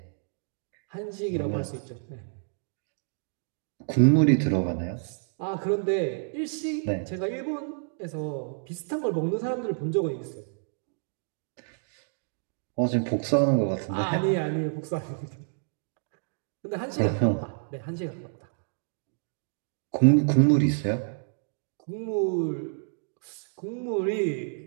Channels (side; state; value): left; silent; digital silence